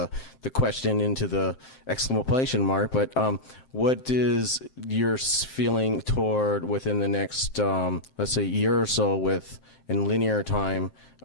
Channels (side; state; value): right; late; 7.6 ms